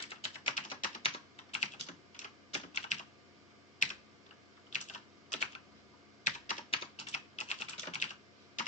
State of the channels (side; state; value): both; normal; correlation 0.09